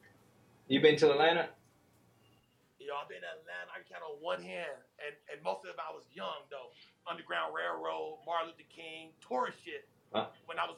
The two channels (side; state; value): both; identical; correlation 1.00